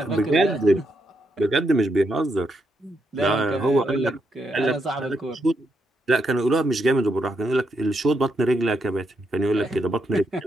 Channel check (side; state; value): both; normal; correlation 0.80